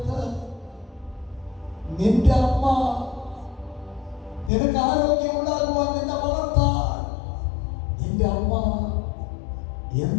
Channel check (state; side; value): drops out; right; at 4.5 s